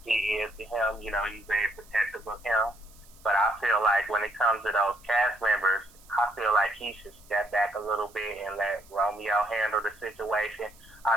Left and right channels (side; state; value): right; noise; hiss, 26 dB below the sound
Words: P is to him. He's very protective of him. But I feel like when it comes to those cast members, I feel like he should step back a little bit and let Romeo handle the situation. I